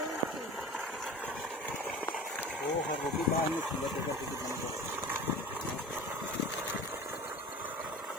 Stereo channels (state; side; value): normal; both; correlation 0.36